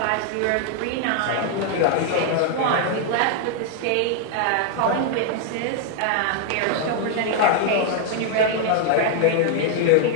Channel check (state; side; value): different; both; correlation 0.00